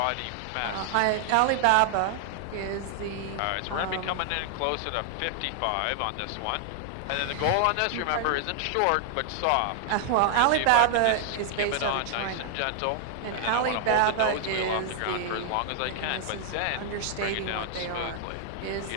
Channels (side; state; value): both; different; correlation 0.00